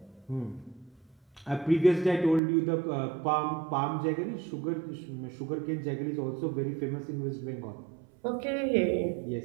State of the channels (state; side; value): drops out; left; at 2.4 s